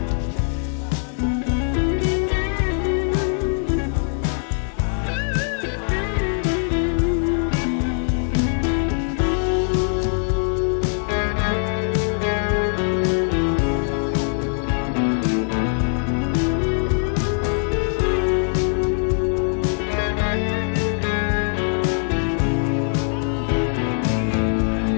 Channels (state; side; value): silent; right; 64 dB below the other